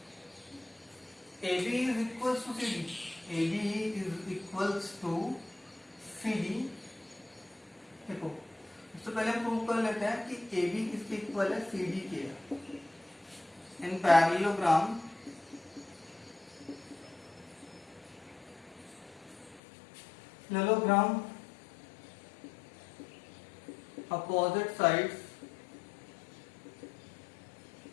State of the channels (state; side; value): drops out; right; at 19.6 s